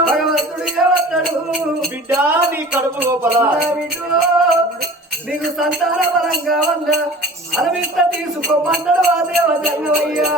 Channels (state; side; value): normal; both; correlation 0.42